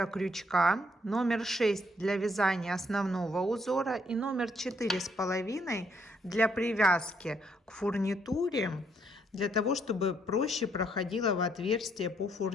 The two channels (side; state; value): both; normal; correlation 0.71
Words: крючка, номер 6 для вязания основного узора и номер 4,5 для привязки к фурнитуре, для того, чтобы проще проходила в отверстие по